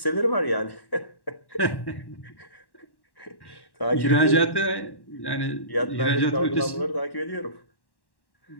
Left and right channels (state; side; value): late; right; 1.1 ms